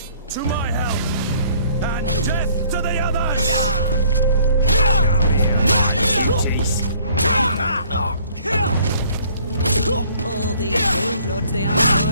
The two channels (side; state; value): both; inverted; correlation -0.58